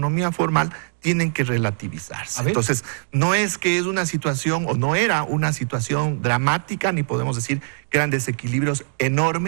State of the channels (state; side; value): silent; left; digital silence